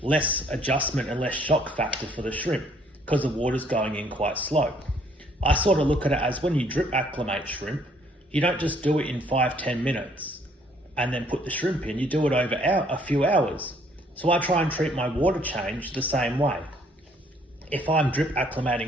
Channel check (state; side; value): normal; both; correlation 0.64